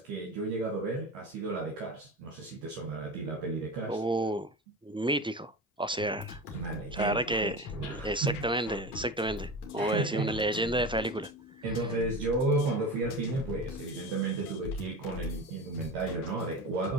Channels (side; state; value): both; normal; correlation 0.29